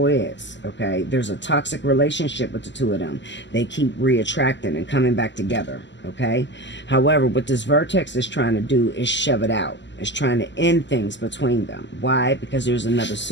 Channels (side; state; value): right; late; 0.53 ms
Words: is, okay, there's a toxic relationship with the two of them. They keep reattracting and coming back together, okay? However, what this vertex is trying to do is shove it out. It's trying to end things between them. Why? Because there's another